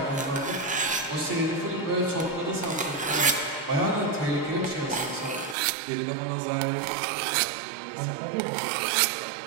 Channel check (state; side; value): drops out; left; at 5.6 s